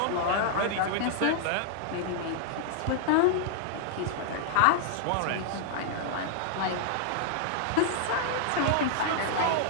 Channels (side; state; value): both; different; correlation -0.01